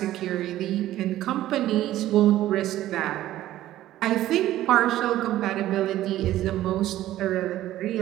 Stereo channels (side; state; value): left; quieter; 14.1 dB